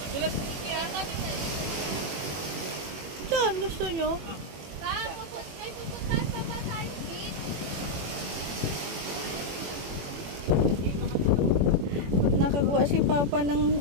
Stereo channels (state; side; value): late; left; 21 ms